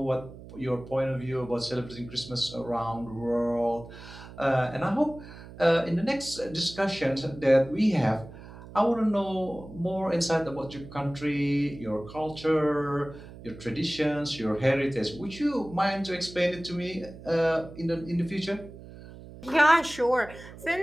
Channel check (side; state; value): right; noise; hum, 16 dB below the sound